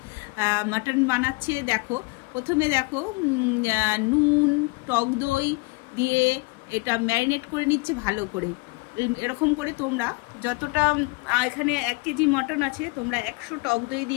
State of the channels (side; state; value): right; quieter; 27.1 dB